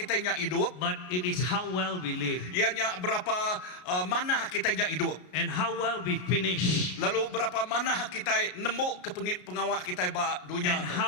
inyak hidup. but it is how well we live Ianya berapa mana kita inyak hidup. and how well we finish Lalu berapa mana kita nemu ke pengawak kita ba dunia and tu.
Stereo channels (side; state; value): right; late; 33 ms